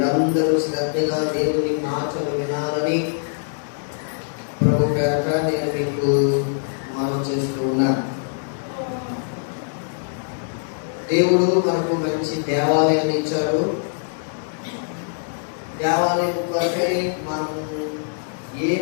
శ్రద్ధగా దేవుని మాటలు వినాలని ప్రభు పేరట నేను మీకు మనం చేస్తూ ఉన్నాను. దేవుడు మనకు మంచి దేవాలయాన్ని ఇచ్చాడు. దేవాలయం కొరకై మనం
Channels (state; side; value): silent; right; digital silence